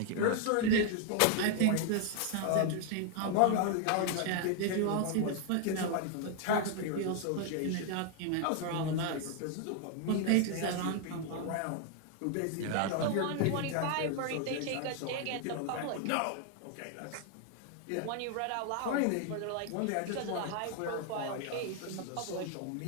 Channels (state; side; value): different; both; correlation 0.00